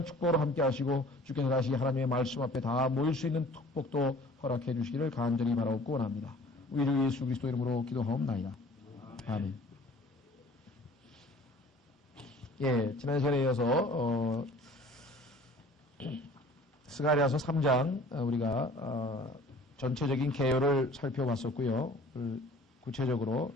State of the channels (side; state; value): both; normal; correlation 0.49